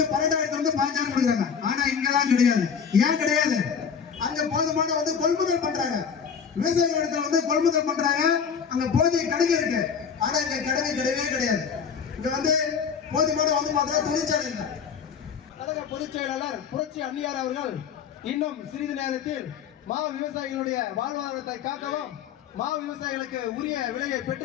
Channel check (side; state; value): right; quieter; 6.9 dB